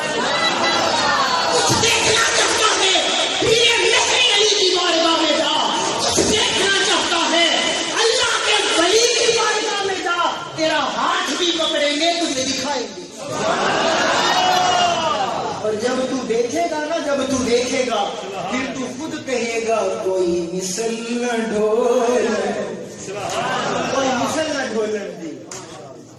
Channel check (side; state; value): both; identical; correlation 1.00